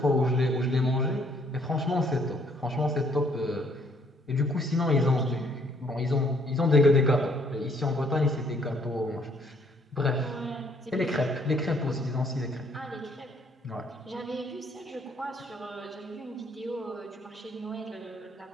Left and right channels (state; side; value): normal; both; correlation 0.65